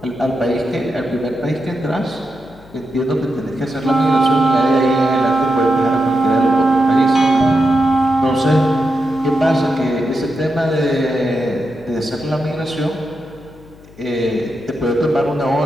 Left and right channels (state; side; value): noise; left; hum, 24 dB below the sound